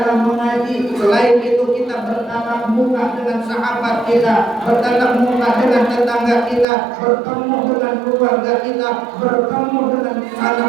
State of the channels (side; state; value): left; drops out; at 6.7 s